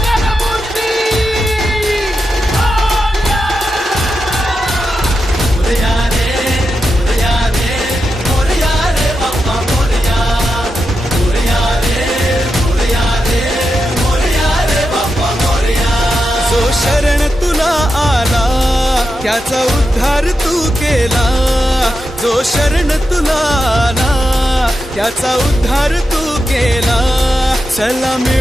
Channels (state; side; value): normal; both; correlation 0.88